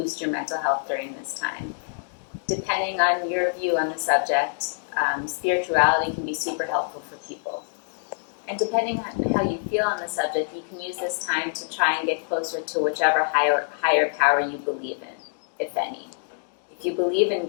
your mental health during this time. Depending on your view on the subject, spirituality can be super helpful for people. And depending on how you feel on the subject, you can use this time to try and get closer to whichever higher power you believe in, if any. If you believe in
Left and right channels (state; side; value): silent; right; digital silence